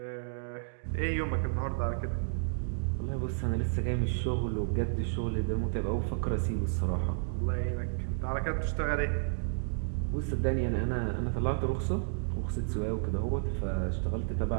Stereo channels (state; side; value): silent; left; digital silence